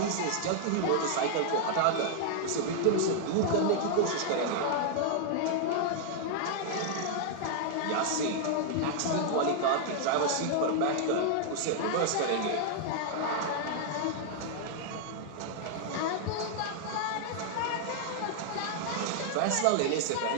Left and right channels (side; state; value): both; different; correlation -0.01